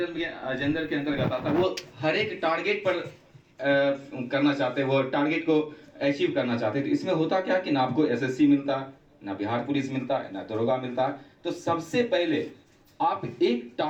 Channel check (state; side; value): identical; both; correlation 1.00